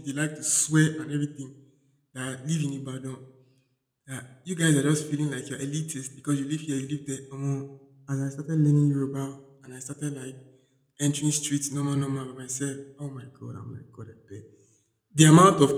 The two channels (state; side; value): identical; both; correlation 1.00